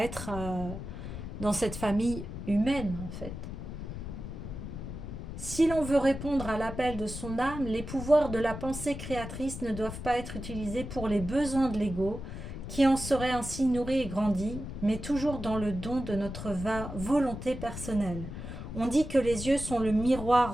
être dans cette famille humaine, en fait. Si l'on veut répondre à l'appel de son âme, les pouvoirs de la pensée créatrice ne doivent pas être utilisés pour les besoins de l'ego, qui en serait ainsi nourri et grandi, mais toujours dans le don de notre volonté personnelle. On dit que les yeux sont le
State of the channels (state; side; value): noise; left; rumble, 8 dB below the sound